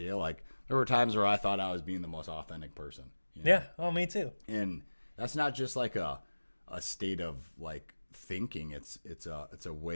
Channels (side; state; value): both; inverted; correlation -1.00